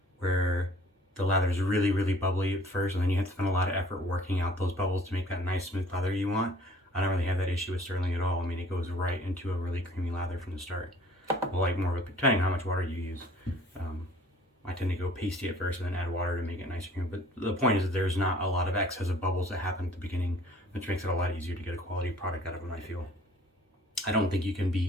where the lather is really, really bubbly at first, and then you have to spend a lot of effort working out those bubbles to make that nice smooth lather you want. I don't really have that issue with Stirling at all. I mean, it goes right into a really creamy lather from the start. Well, like more of a, depending on how much water you use. I tend to go pasty at first and then add water to make it nice and creamy. But the point is that there's not a lot of excess of bubbles that happen at the beginning, which makes it a lot easier to get a quality product out of them, I feel. I don't think you can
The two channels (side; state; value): both; normal; correlation 0.53